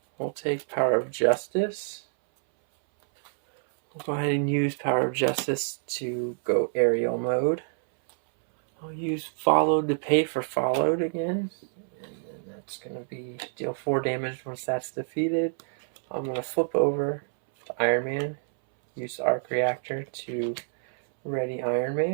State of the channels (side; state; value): left; silent; 60 dB below the other